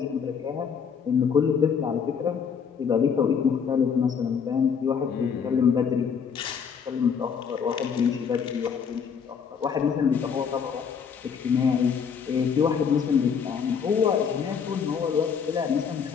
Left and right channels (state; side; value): quieter; right; 6.7 dB